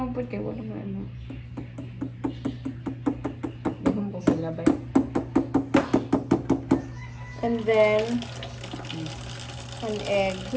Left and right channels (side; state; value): both; identical; correlation 1.00